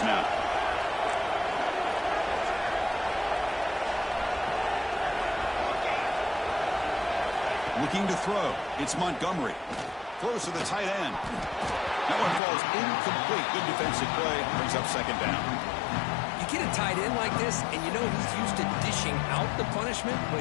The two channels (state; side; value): drops out; right; at 12.4 s